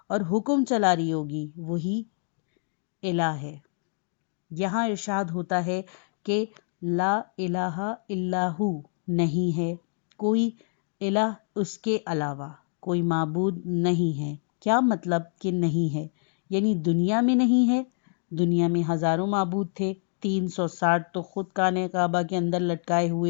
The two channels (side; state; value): right; silent; digital silence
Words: اور حکم چلا رہی ہوگی، وہی الہ ہے۔ یہاں ارشاد ہوتا ہے کہ لا الہ الا ہو، نہیں ہے کوئی الہ اس کے علاوہ، کوئی معبود نہیں ہے۔ کیا مطلب کہ نہیں ہے؟ یعنی دنیا میں نہیں ہے۔ دنیا میں ہزاروں معبود تھے، 360 تو خود خانہ کعبہ کے اندر لٹکائے